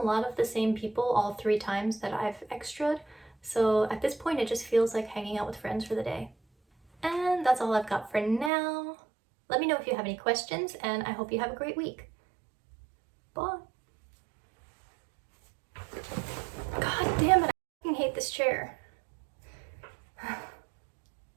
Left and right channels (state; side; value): drops out; left; at 8.5 s